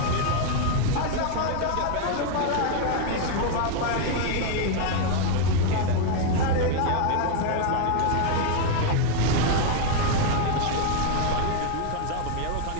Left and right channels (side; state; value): both; different; correlation 0.01